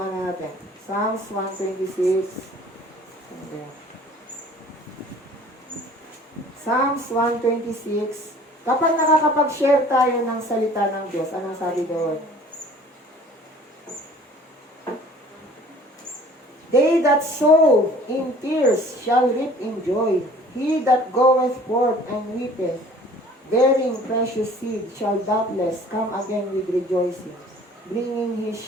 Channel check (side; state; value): both; normal; correlation 0.50